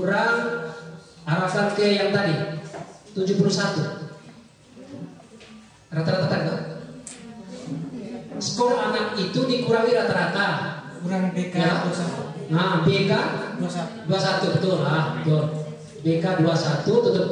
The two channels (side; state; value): both; identical; correlation 1.00